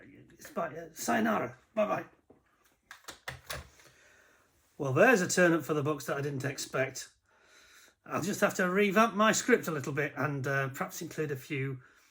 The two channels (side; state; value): both; identical; correlation 1.00